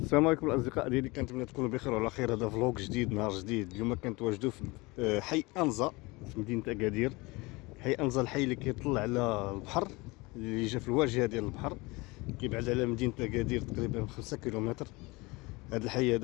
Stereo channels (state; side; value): quieter; right; 24.1 dB